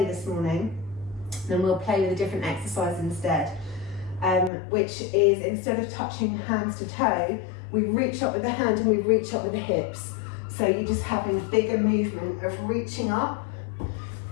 this morning, then we'll play with a different exercise instead, which is instead of touching hands to toe, we reach up with the hand and we reach up with the hips. So you're just having bigger movement of reaching up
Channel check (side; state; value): right; drops out; at 4.5 s